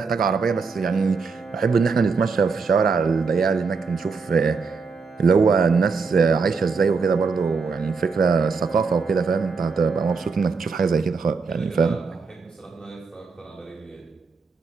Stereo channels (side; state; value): left; quieter; 4.8 dB